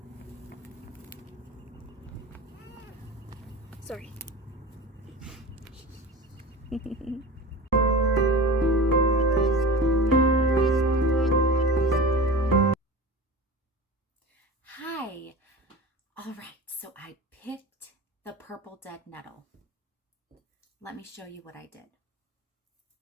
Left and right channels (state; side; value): normal; both; correlation 0.32